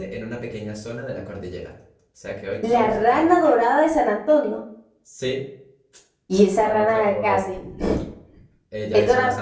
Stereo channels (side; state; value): both; identical; correlation 1.00